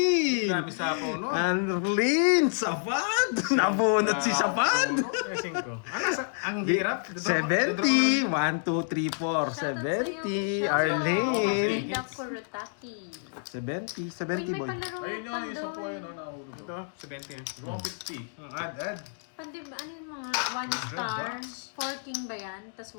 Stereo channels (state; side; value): silent; right; digital silence